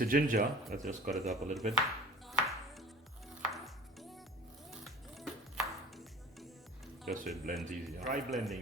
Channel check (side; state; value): both; normal; correlation 0.41